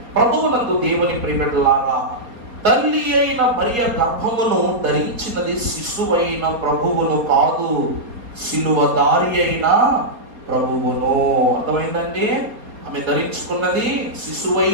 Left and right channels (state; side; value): late; left; 4.3 ms